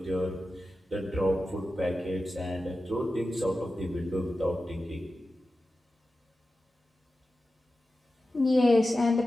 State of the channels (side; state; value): both; normal; correlation 0.93